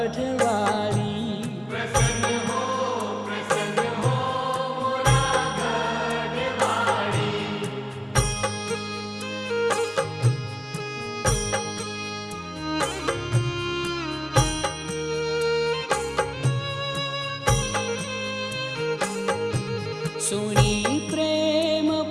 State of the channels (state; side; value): identical; both; correlation 1.00